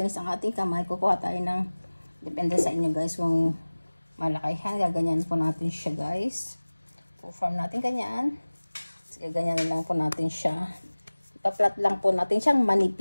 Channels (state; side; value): inverted; both; correlation -1.00